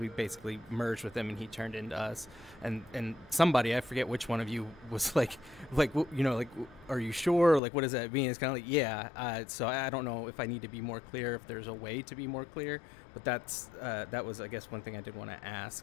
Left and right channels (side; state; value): right; drops out; at 7.6 s